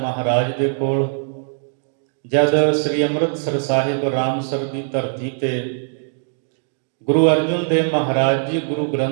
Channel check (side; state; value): left; silent; digital silence